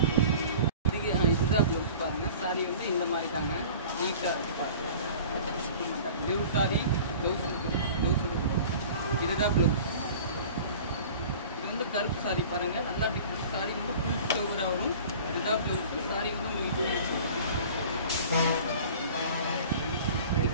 இதுதான் ப்ளவுஸ் பாருங்கள். சாரி வந்து இந்த மாதிரி தாங்க. நீட்டாக பாருங்கள். Pure sorry. ப்ளவுஸ் இதுதான் ப்ளவுஸ். இது வந்து கருப்பு சாரி பாருங்கள். நல்லா டிஃப்ரெண்ட் சாரி வந்து ஃபுல் ஃப்ளவராக வரும். இதுதான் ப்ளவுஸ். சாரி வந்து உங்களுக்கு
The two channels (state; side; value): inverted; both; correlation -0.43